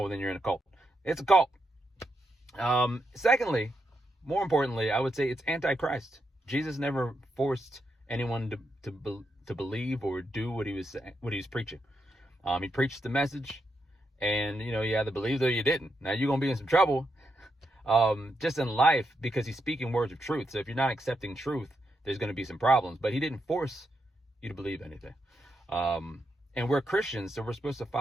then you're in a cult. It's a cult. Secondly, more importantly, I would say it's anti-Christ. Jesus never forced anyone to believe or do what he was preaching. He preached the message, and you either believed or you didn't. Now you're gonna be in some trouble, just in life, because he's speaking words of truth. So if you're not accepting truth, there's gonna be some problems. But he didn't force you to believe anything. And we're Christians, so we're supposed to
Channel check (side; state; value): both; normal; correlation 0.82